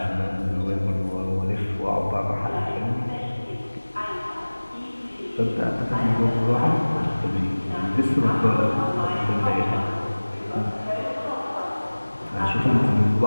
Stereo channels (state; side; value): inverted; both; correlation -1.00